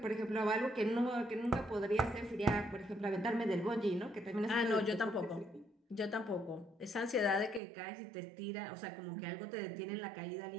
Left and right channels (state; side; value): drops out; left; at 7.6 s